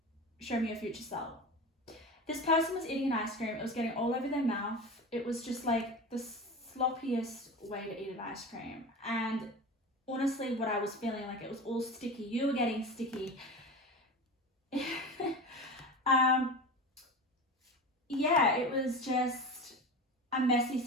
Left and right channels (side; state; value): both; normal; correlation 0.29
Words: show me your future self. This person was eating an ice cream, it was getting all over their mouth. It was just like the sloppiest way to eat an ice cream. And honestly, what I was feeling like, it was all sticky. You were getting sticky. It was just a messy